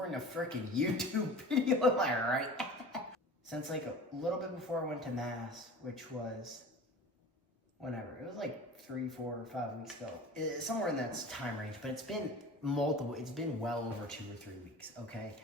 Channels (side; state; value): both; normal; correlation 0.39